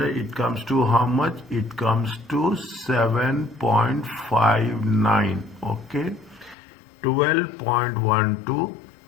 comes to how much? It comes to 7.59. Okay,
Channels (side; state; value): right; drops out; at 6.6 s